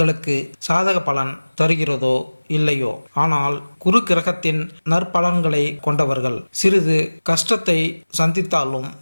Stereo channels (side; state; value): both; inverted; correlation -1.00